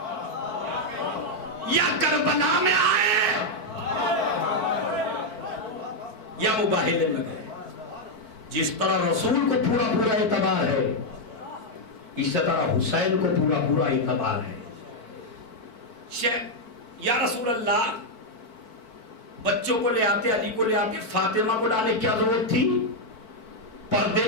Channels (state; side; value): late; right; 4.5 ms